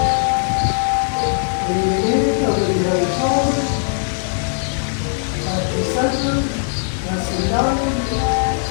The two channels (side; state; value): right; silent; 66 dB below the other